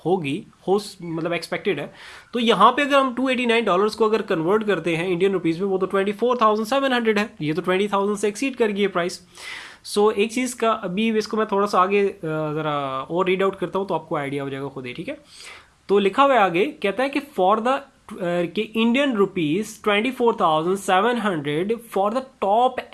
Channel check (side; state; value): both; identical; correlation 1.00